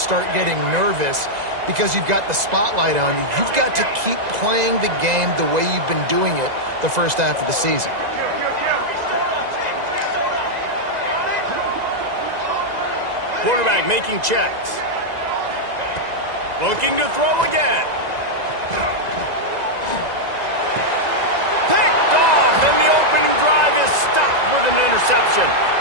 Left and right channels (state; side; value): late; left; 2.0 ms